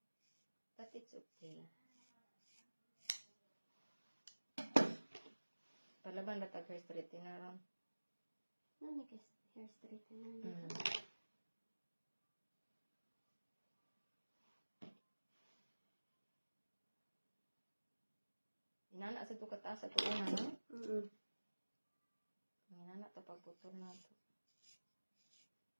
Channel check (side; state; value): both; inverted; correlation -1.00